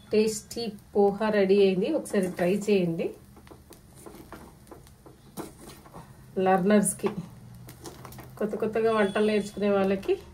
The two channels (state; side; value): identical; both; correlation 1.00